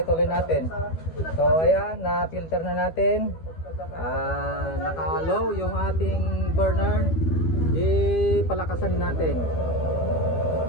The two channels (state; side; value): late; right; 12 ms